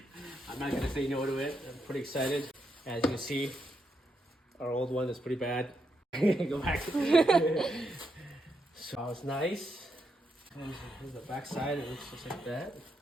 I'm not gonna say no to it. I'm pretty excited. As you can see, our old one is pretty bad. Go back. So it's nice. Here's the back side. It looks just like that.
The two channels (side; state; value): both; normal; correlation 0.81